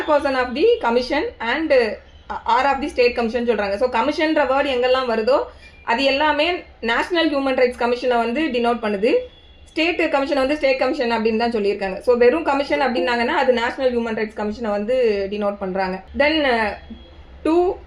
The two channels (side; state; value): both; identical; correlation 1.00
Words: of the commission and or of the state commission சொல்கிறாங்க. ஸோ கமிஷன்ற வேர்டு எங்கெல்லாம் வருதோ அது எல்லாமே நேஷனல் ஹியூமன் ரைட்ஸ் கமிஷனை வந்து டினோட் பண்ணுது. ஸ்டேட் கமிஷனை வந்து ஸ்டேட் கமிஷன் அப்படின்னு தான் சொல்லியிருக்காங்க. ஸோ வெறும் கமிஷன் அப்படின்னாங்கன்னா அது நேஷனல் ஹியூமன் ரைட்ஸ் கமிஷனை வந்து டினோட் பண்ணுறாங்க. தென் 2